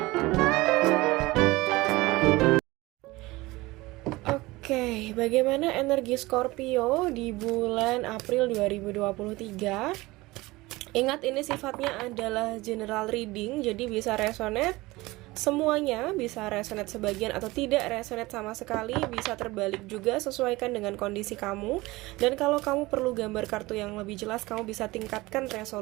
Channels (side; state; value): left; quieter; 20.7 dB